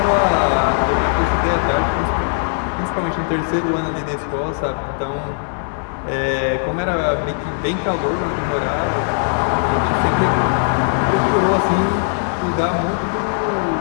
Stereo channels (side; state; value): right; silent; digital silence